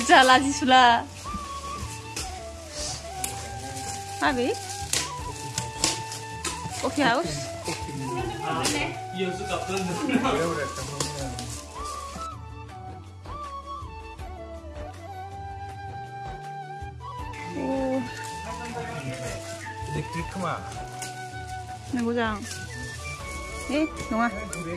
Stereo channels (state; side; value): identical; both; correlation 1.00